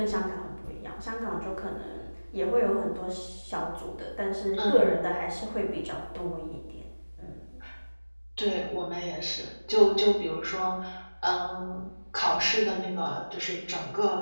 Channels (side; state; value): both; inverted; correlation -1.00